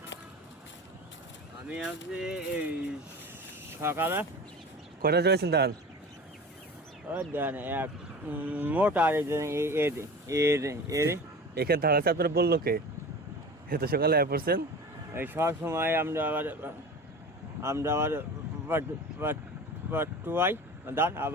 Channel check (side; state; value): both; normal; correlation 0.35